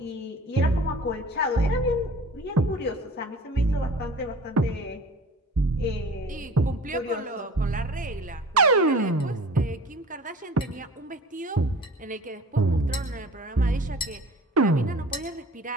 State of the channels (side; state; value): both; normal; correlation 0.43